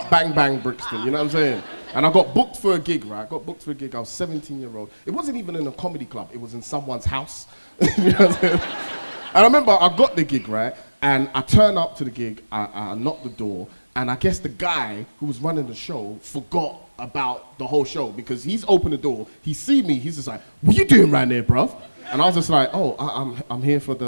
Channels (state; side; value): inverted; both; correlation -1.00